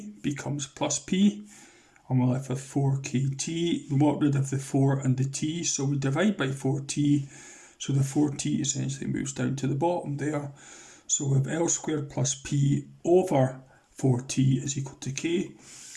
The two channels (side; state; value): both; identical; correlation 1.00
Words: becomes plus p. And we're left with 4kt. We want rid of the 4 and the t, so we divide by 4t. So the 4t essentially moves down to the bottom there. So we have L squared plus p over 4t is equal to k.